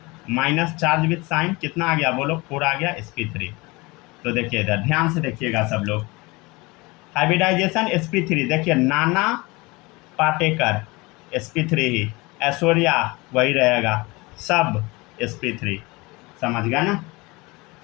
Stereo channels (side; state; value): right; quieter; 24.1 dB